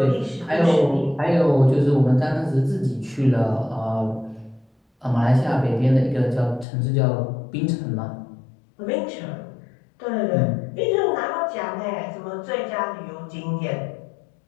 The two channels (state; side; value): drops out; right; at 6.7 s